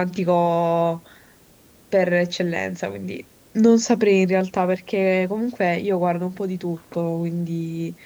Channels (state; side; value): identical; both; correlation 1.00